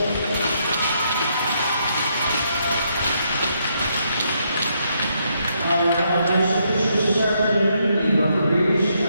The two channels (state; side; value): inverted; both; correlation -0.76